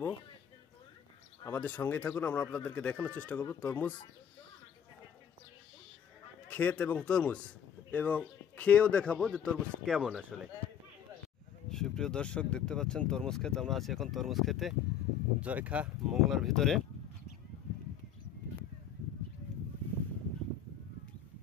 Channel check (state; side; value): quieter; right; 8.4 dB